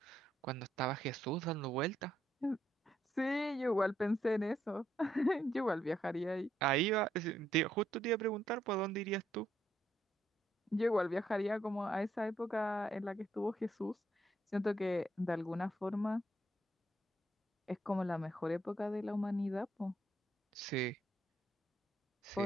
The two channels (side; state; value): both; normal; correlation 0.74